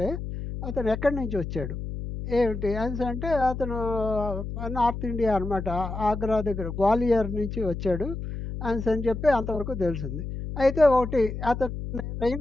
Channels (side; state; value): left; noise; hum, 6 dB below the sound